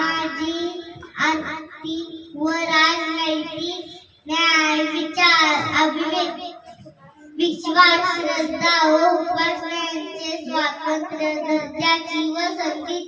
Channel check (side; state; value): both; identical; correlation 1.00